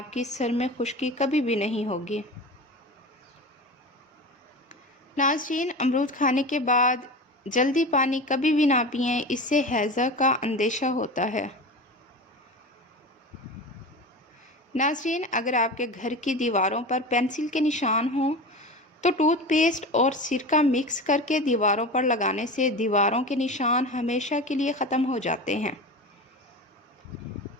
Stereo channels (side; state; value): both; normal; correlation 0.29